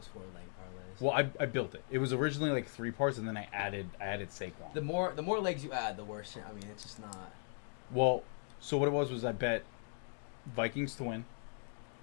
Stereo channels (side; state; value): right; silent; 52 dB below the other